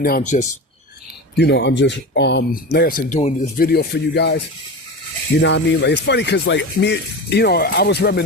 I'm just, like I said, doing this video for you guys. You know what I mean? Like, it's funny cause like me, I was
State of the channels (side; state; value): both; normal; correlation 0.27